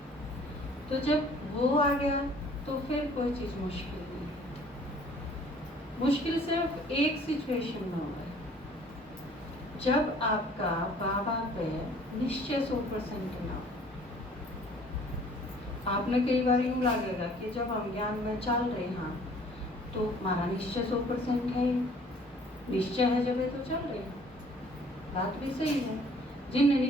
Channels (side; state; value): both; normal; correlation 0.55